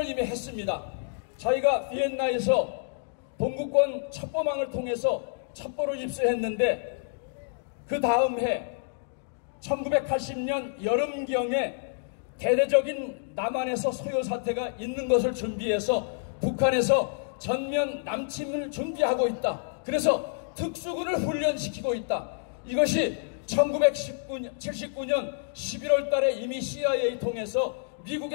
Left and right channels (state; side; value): silent; right; digital silence